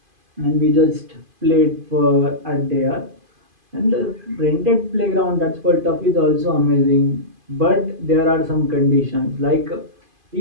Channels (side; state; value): left; late; 2.5 ms